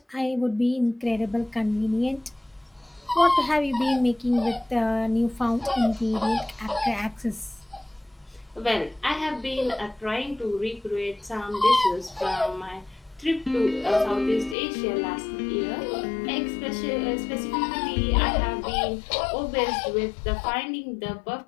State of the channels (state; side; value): drops out; right; at 14.6 s